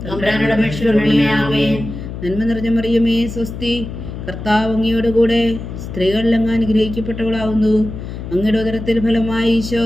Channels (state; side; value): noise; left; hum, 9 dB below the sound